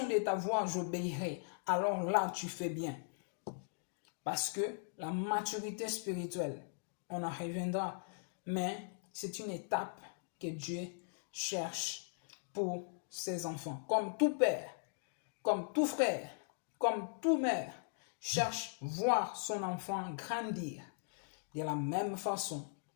de ta voix, j'obéirai. Alors là, tu fais bien. Parce que la maturité spirituelle, on en reviendra, mais c'est une étape que Dieu cherche pour ses enfants. Comme tout père, comme tout frère, comme toute mère, cherche voir son enfant grandir de la même façon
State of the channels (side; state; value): right; silent; digital silence